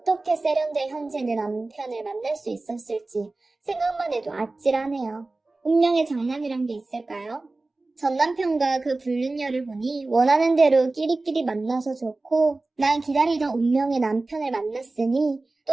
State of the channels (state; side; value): quieter; left; 3.2 dB